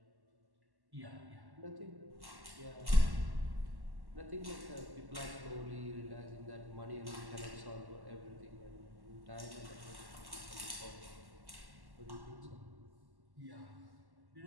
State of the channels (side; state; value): left; late; 1.1 ms